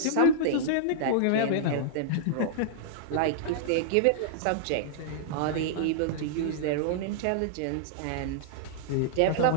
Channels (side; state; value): both; different; correlation -0.02